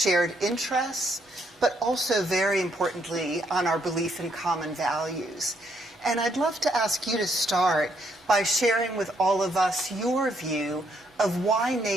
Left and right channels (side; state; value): both; normal; correlation 0.72